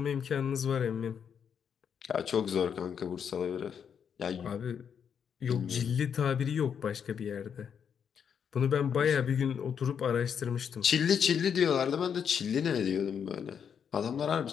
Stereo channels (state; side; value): quieter; right; 7.5 dB